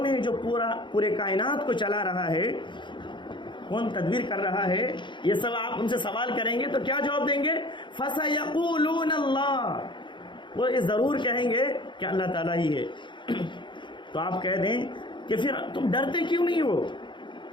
ہے جو پورے کائنات کو چلا رہا ہے، کون تدبیر کر رہا ہے؟ یہ سب آپ ان سے سوال کریں گے تو کیا جواب دیں گے؟ فَسَيَقُولُونَ اللَّهُ، وہ ضرور کہیں گے کہ اللہ تعالیٰ ہی ہے۔ تو آپ کہہ دیں کہ پھر تم ڈرتے کیوں نہیں ہو؟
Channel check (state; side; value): late; right; 0.23 ms